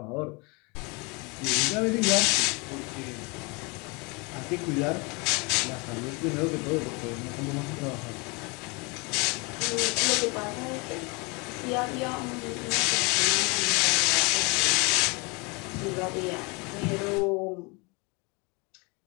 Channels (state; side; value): quieter; right; 29.0 dB